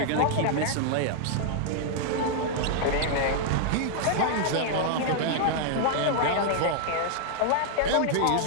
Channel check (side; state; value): both; different; correlation 0.00